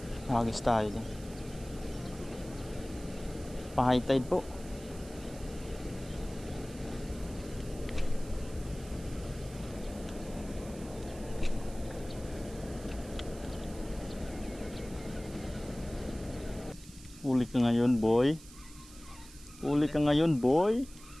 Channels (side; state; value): right; noise; hiss, 19 dB below the sound